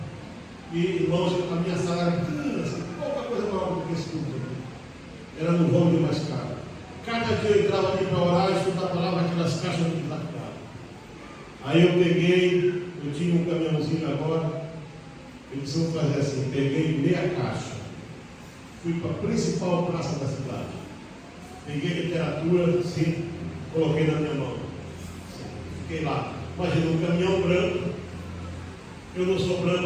E, irmãos, a minha sala era pequena, assim, pouca coisa maior do que esse culto aqui. Era no vão de mais caro. Cada dia eu entrava ali para orar e estudar a palavra, aquelas caixas de desafiado. Aí eu peguei, eu tinha um caminhãozinho agora. Eles vão fazer assim, peguei meia caixa, fui para a principal praça da cidade, peguei literatura, assim, coloquei na minha mão, assim, fiquei lá. Imagina um caminhão branco, eu não sou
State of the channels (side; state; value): both; identical; correlation 1.00